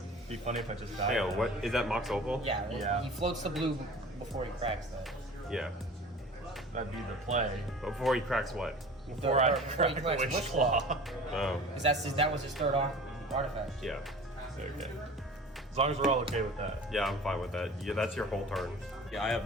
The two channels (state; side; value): normal; both; correlation 0.41